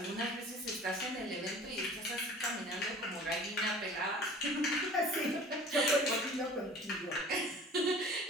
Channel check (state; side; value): normal; both; correlation 0.45